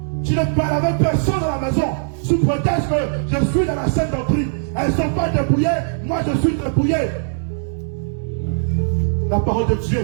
Tu ne parles avec personne à la maison. Sous prétexte que je suis dans la scène doctrine. Elles ne sont pas dépouillées, moi je suis dépouillé. La parole de Dieu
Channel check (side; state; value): left; silent; 66 dB below the other